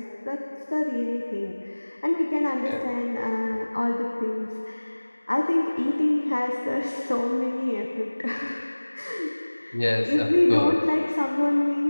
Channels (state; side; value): inverted; both; correlation -1.00